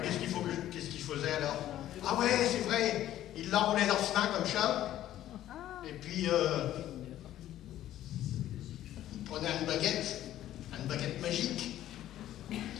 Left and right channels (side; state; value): right; quieter; 12.9 dB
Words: qu'est-ce qu'il faisait alors? Ah ouais, c'est vrai. Il l'enroulait dans sa main comme ça. Et puis, il prenait une baguette magique.